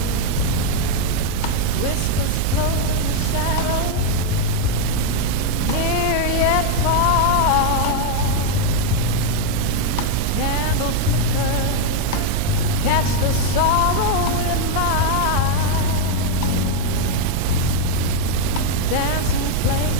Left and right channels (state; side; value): different; both; correlation 0.01